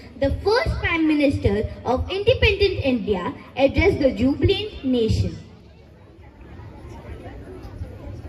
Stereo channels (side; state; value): both; identical; correlation 1.00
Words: the first Prime Minister of independent India, addressed the jubilant nation.